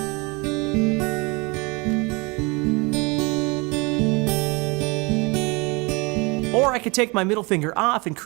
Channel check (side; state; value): left; quieter; 27.7 dB